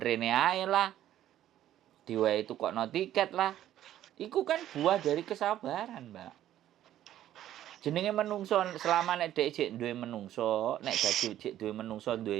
rene ae lah. Diwehi tukokno tiket lah. Iku kan buah dari kesabaran, Mbak. Jenenge menungso selama nek dhek jek duwe menungso, nek dadi jek duwe menungso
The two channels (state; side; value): quieter; left; 12.3 dB